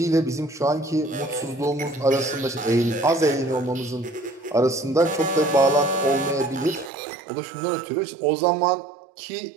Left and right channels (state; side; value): drops out; left; at 6.9 s